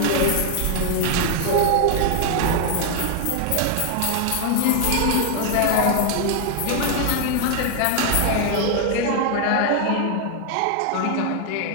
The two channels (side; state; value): both; different; correlation 0.00